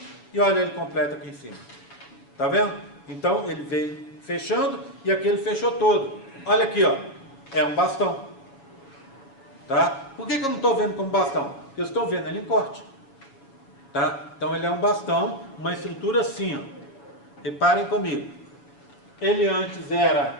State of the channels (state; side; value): late; right; 7.4 ms